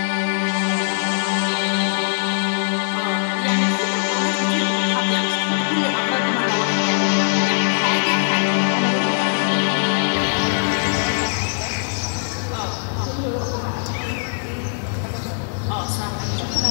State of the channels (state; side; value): silent; right; 61 dB below the other